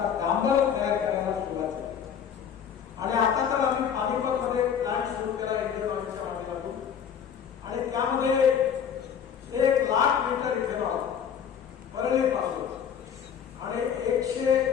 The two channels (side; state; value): right; quieter; 8.0 dB